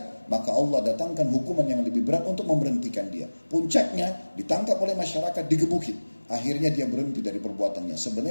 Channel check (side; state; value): both; inverted; correlation -1.00